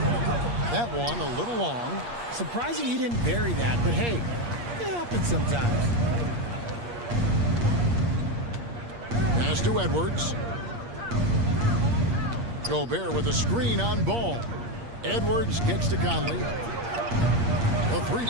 one a little long. Surprising he didn't bury that, but hey, it happens sometimes. Pass to Edwards. Gobert with a screen on Ball. Edwards kicks to Conley. A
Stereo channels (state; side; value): late; left; 8.5 ms